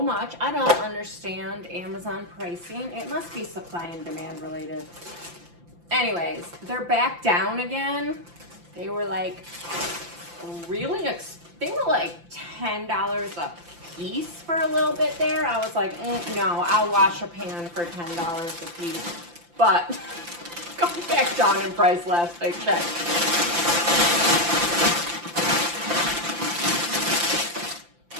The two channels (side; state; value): left; late; 5.8 ms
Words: much. I don't understand Amazon pricing. It must be supply and demand related. Anyways, they're back down again. They were like they were like $10 a piece for a little bit there. I was like, no, I'll wash a pan for $10 a piece. But going back down in price last I checked.